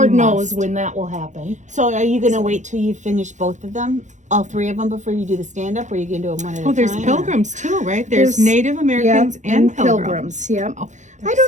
You knows must. when that will happen. So are you going to wait till you finish both of them? All three of them before you do the stand-up? Or are you going to do them one at a Oh, there's time? or- pilgrims too, right? There's Native Americans Yep, and pilgrims. Yep. Oh, I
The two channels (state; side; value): late; left; 0.35 ms